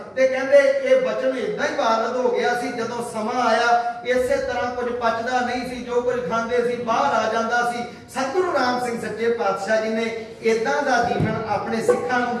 ते कहंदे ये वचन इदां ही वारद हो गया सी। जदों समा आया इसे तरह कुछ पचदा नहीं सी, जो कुछ खांदे सी बाहर आ जांदा सी। सतगुरु राम सिंह सच्चे पातशाह जी ने इदां दा जीवन अपने सिखां नूं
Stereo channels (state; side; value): identical; both; correlation 1.00